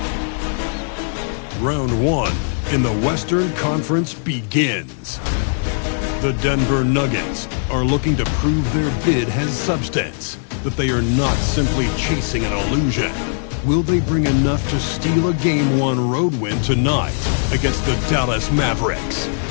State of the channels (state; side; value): silent; right; digital silence